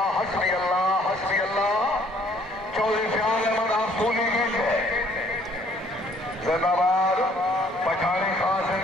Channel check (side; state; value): both; normal; correlation 0.61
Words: हस्बी अल्लाह हस्बी अल्लाह। चौधरी फयाज अहमद आप सूलीवेंड जिंदाबाद। पठानी खान